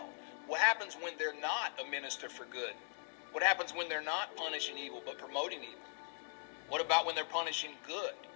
What happens when they're not a minister for good? What happens when they're not punishing evil but promoting evil? What about when they're punishing good?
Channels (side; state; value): right; silent; digital silence